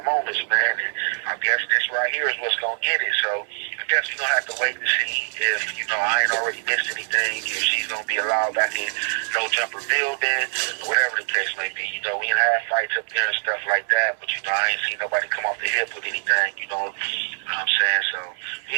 moments, man. And I guess this right here is what's going to get it. So I guess we're going to have to wait to see if, you know, I ain't already missed anything, if she's going to be allowed back in no jumper building, whatever the case may be. You know, we ain't had fights up there and stuff like that, but, you know, I ain't seen nobody come off the hip with anything, you know what I'm saying? So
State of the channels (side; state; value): left; silent; 63 dB below the other